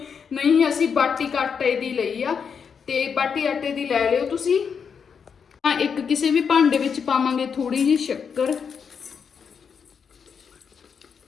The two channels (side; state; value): right; quieter; 6.5 dB